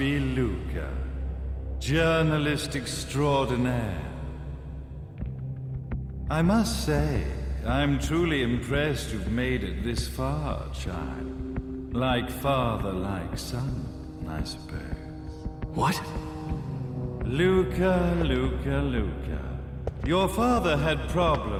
Luca, journalist extraordinaire. I must say, I'm truly impressed you've made it this far, child. Like father, like son, I suppose. What? Luca, Luca, Luca. Your father had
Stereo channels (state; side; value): identical; both; correlation 1.00